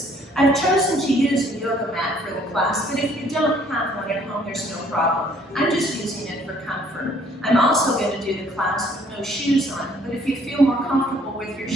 I've chosen to use a yoga mat for the class, but if you don't have one at home, there's no problem. I'm just using it for comfort. I'm also going to do the class with no shoes on, but if you feel more comfortable with your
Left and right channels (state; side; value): normal; both; correlation 0.61